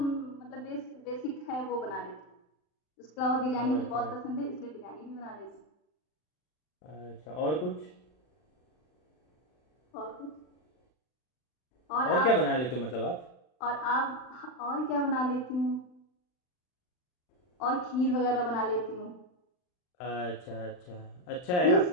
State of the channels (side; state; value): right; late; 39 ms